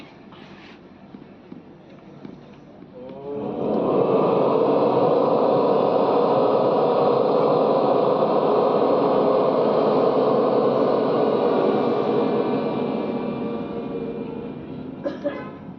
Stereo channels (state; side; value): identical; both; correlation 1.00